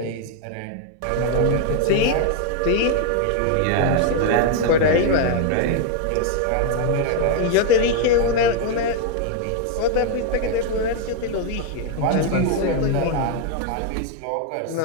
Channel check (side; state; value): both; different; correlation 0.00